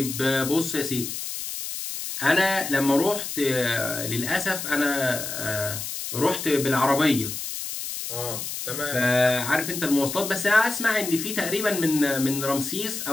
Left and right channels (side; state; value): left; noise; hiss, 6 dB below the sound